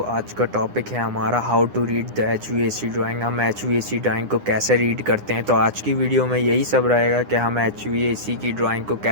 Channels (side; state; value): left; late; 9.8 ms